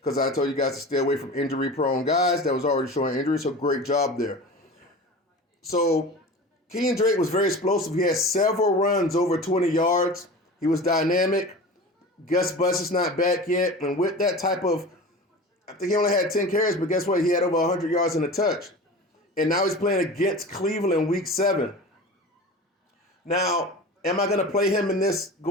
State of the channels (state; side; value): normal; both; correlation 0.34